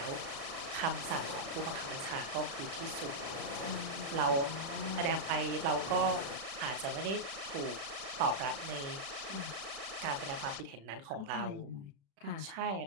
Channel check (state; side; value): late; left; 36 ms